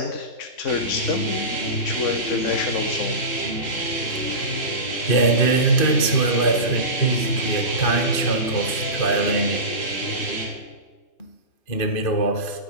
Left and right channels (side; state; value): right; late; 2.5 ms